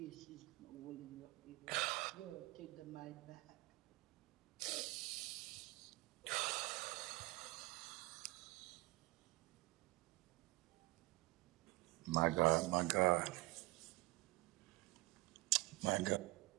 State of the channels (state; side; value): quieter; left; 21.3 dB